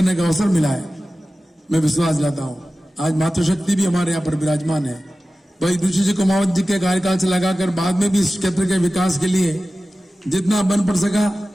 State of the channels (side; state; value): both; normal; correlation 0.95